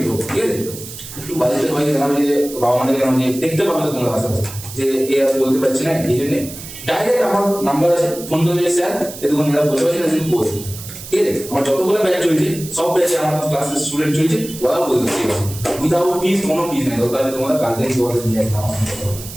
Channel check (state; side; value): noise; right; hiss, 13 dB below the sound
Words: ঠিক আছে, একটু বাড়িতে সবাইকে জানাবে যে বাবা মাদের জানাবে যে দেখতে পাবে তো তোমরা আশেপাশে যে এ আর বলতে পারছি না, এই জন্য ডাইরেক্ট আমার নাম্বার আছে, ফোন করে স্যার এতক্ষণ এরা বলতে পারছি না কিন্তু বলছি, ঠিক আছে। আমার যতগুলো ব্যাচ চলছে সব ব্যাচে আমার ক্লাসের স্টুডেন্ট চলছে, ওরাও বলতে ঠিক আছে, উইদাউট ফিস, কোনো ফিস নেই, দরকার তোমরা গার্জেন তোমাদের নিয়ে একদম,